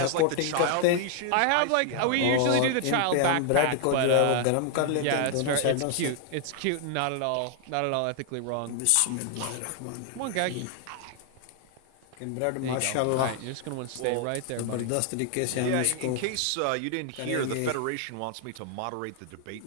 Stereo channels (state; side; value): different; both; correlation 0.00